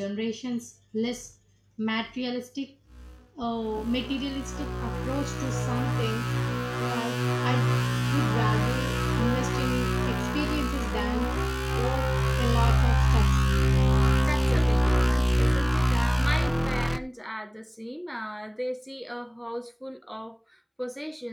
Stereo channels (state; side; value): identical; both; correlation 1.00